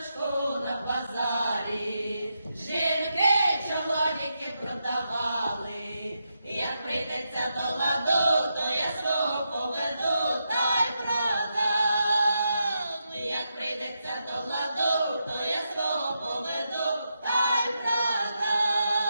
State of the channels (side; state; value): both; inverted; correlation -0.85